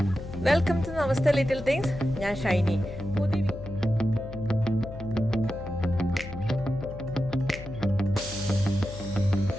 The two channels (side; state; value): left; noise; hum, 12 dB below the sound